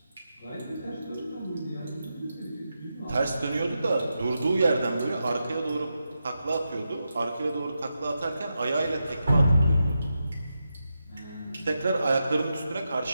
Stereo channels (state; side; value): inverted; both; correlation -0.88